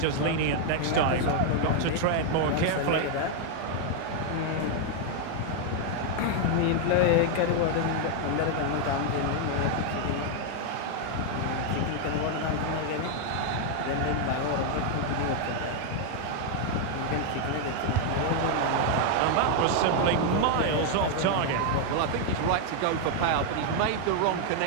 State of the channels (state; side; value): different; both; correlation 0.00